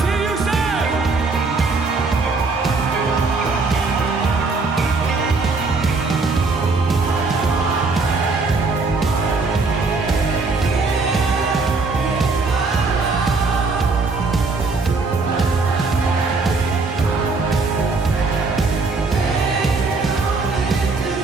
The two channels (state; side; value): quieter; left; 3.9 dB